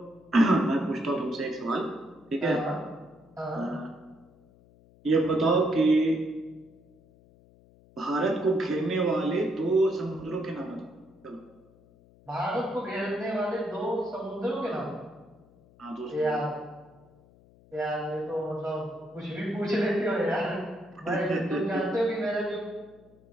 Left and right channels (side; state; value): left; noise; hum, 27 dB below the sound